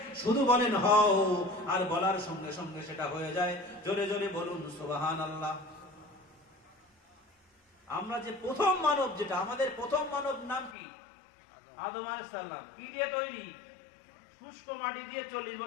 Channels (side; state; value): right; drops out; at 10.8 s